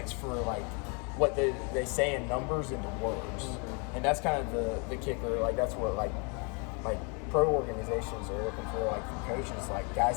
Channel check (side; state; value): right; quieter; 34.3 dB